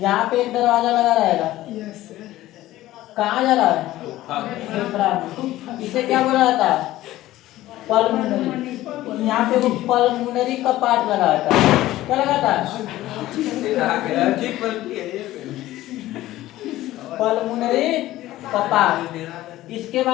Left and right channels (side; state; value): right; quieter; 15.6 dB